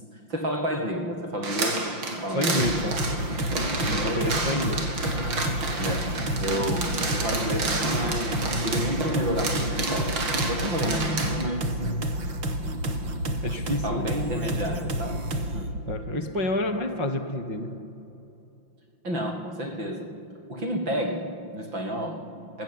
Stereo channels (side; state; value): left; late; 5.8 ms